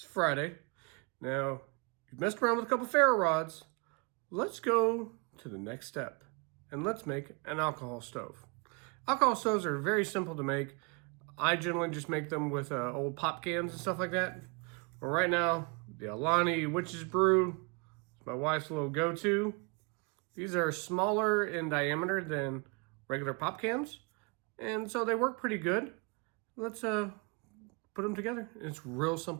Friday. Now, you've messed around with a couple ferro rods. Let's go to the next step, and let's make an alcohol stove. Alcohol stoves are very simple to make. I generally just make them with old pop cans and stuff like that. But right now, the Alani Witch's Brew is my wife's little go-to. These are smaller in diameter than regular pop cans, and so they work pretty good. Let's put them together. It's real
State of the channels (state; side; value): quieter; left; 31.6 dB